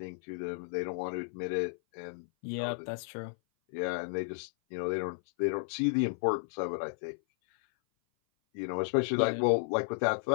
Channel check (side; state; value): right; silent; 56 dB below the other